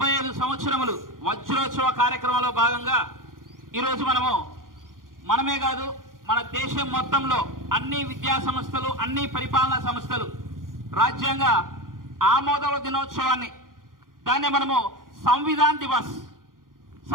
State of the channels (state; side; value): late; left; 0.90 ms